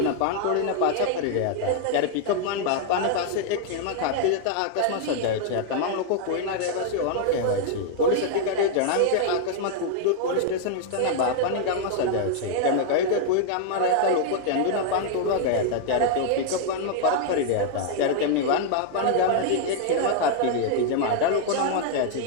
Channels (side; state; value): both; different; correlation 0.00